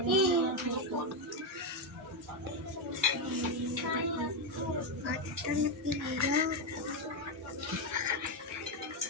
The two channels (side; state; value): both; normal; correlation 0.06